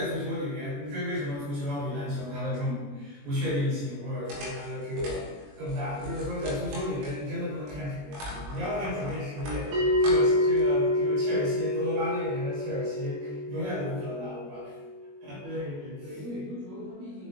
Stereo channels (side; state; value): left; late; 21 ms